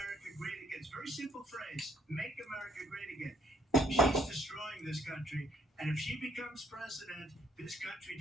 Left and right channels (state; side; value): normal; both; correlation 0.66